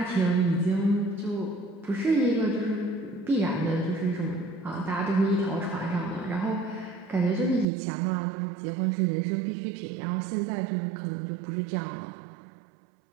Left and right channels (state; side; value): drops out; left; at 7.7 s